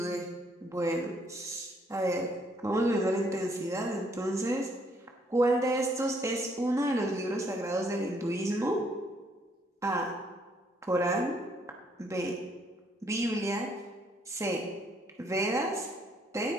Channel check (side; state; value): both; normal; correlation 0.68